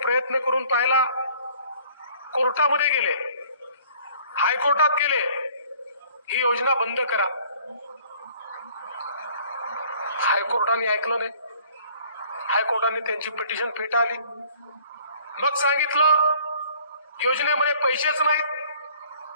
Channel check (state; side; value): inverted; both; correlation -0.55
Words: करून पाहिला, कोर्टामध्ये गेले, हायकोर्टात गेले, ही योजना बंद करा. हायकोर्टाने ऐकलं नाही. हायकोर्टाने त्यांची पिटिशन फेटाळली. मग सांगितलं योजनेमध्ये पैसेच नाहीत.